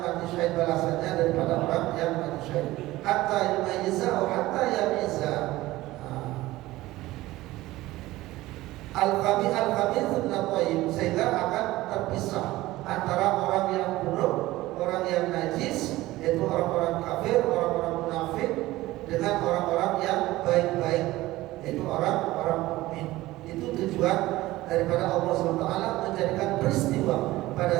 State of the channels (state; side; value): quieter; left; 17.6 dB